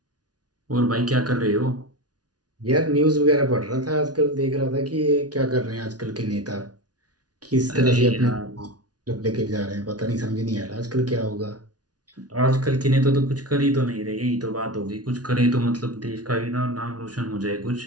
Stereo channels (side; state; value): left; late; 0.69 ms